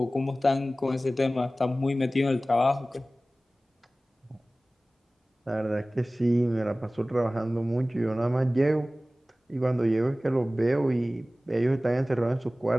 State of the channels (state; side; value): normal; both; correlation 0.97